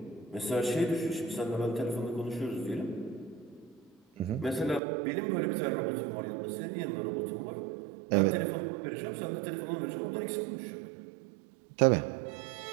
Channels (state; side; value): drops out; left; at 4.8 s